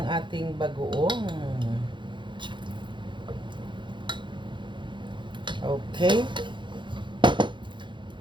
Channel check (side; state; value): left; late; 0.23 ms